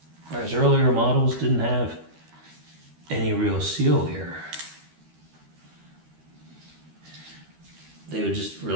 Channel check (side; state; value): left; late; 13 ms